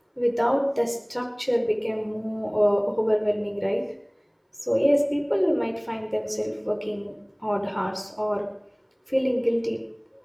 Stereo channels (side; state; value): both; identical; correlation 1.00